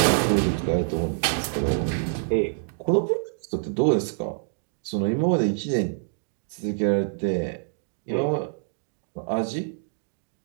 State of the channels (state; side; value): silent; left; digital silence